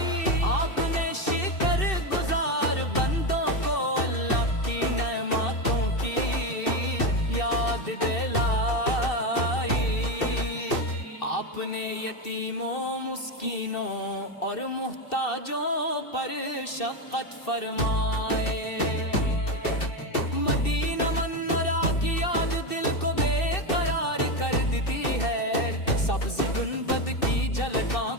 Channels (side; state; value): right; late; 2.7 ms